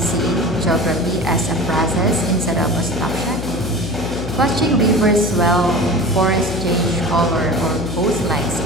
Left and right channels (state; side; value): noise; left; hum, 7 dB below the sound